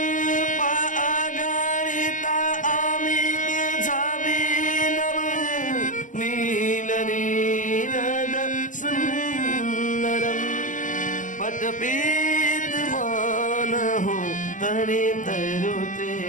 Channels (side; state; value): right; late; 0.37 ms